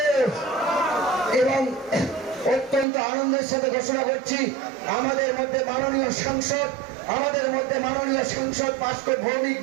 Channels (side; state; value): left; drops out; at 2.9 s